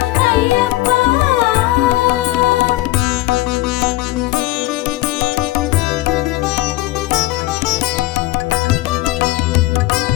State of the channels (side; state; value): right; quieter; 18.1 dB